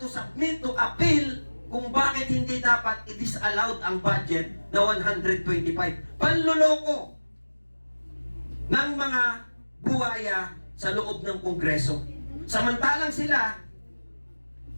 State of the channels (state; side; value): inverted; both; correlation -1.00